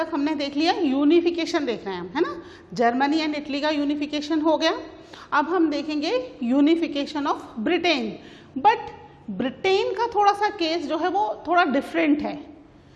हमने देख लिया यूनिफिकेशन देख रहे हैं हम, है ना. जर्मनी एंड इटली का यूनिफिकेशन हो गया. अब हम देखेंगे unification of Britain. But Britain का थोड़ा सा केस जो है वो थोड़ा डिफरेंट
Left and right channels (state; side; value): identical; both; correlation 1.00